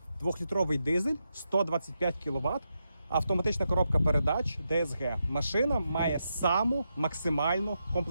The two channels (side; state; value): both; inverted; correlation -0.85